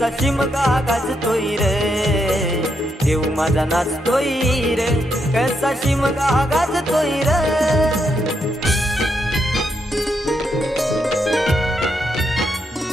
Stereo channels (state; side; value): normal; both; correlation 0.80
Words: शिमगा गाजतोय र. देव माझा नाचतोय रे, कसा शिमगा गाजतोय रे.